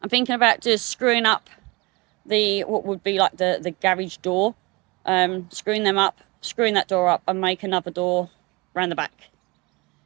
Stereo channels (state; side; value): quieter; left; 25.4 dB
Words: I'm thinking about just screwing up what would be like the garage door, screwing that door up and make another door around the back